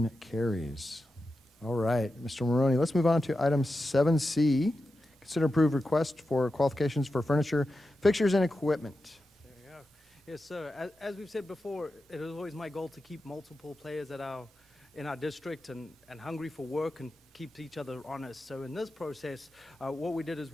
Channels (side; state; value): both; normal; correlation 0.91